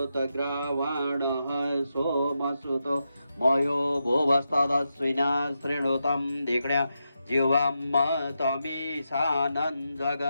सोमसुतो मयो भुवस्तदश्विना शृणुतं धिक्ण्या जीवं तमीशानं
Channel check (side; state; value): both; inverted; correlation -0.86